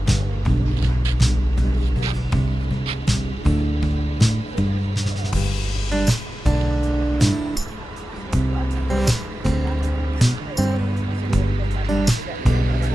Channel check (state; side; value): normal; both; correlation 0.94